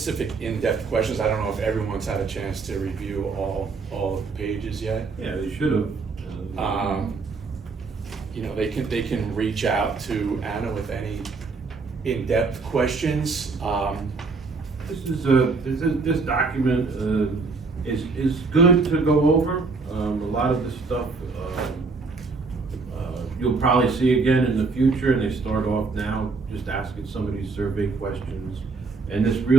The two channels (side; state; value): left; quieter; 4.2 dB